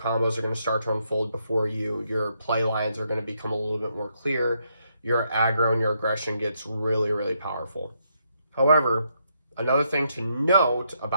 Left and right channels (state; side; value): inverted; both; correlation -0.77